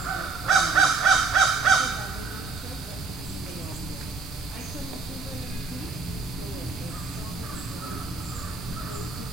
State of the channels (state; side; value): quieter; left; 4.3 dB